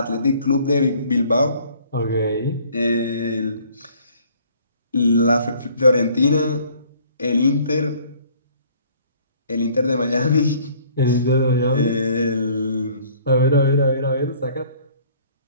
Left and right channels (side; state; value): both; inverted; correlation -0.57